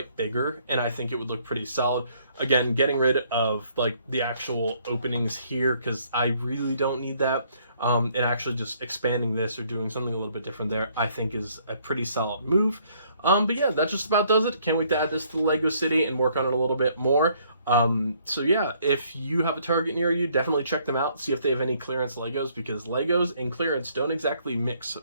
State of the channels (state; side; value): inverted; both; correlation -0.65